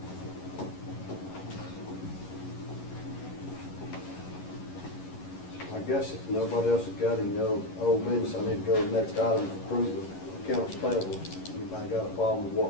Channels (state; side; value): late; right; 11 ms